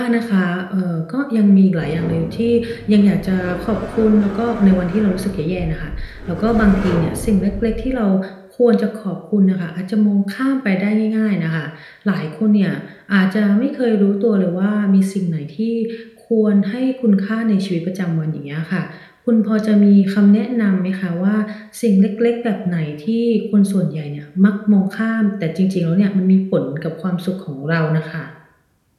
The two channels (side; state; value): both; identical; correlation 1.00